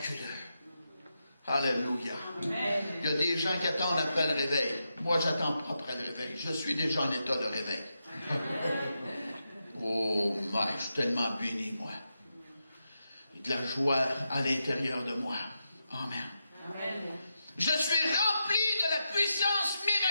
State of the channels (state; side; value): inverted; both; correlation -0.86